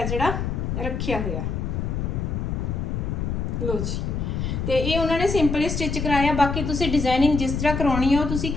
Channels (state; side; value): noise; left; rumble, 2 dB below the sound